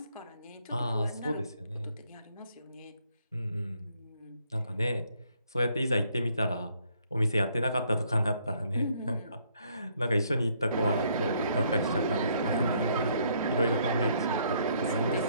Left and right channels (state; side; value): inverted; both; correlation -0.68